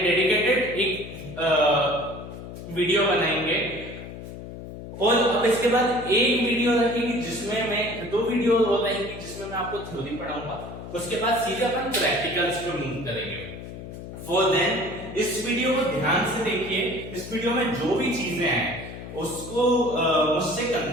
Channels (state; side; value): noise; left; hum, 11 dB below the sound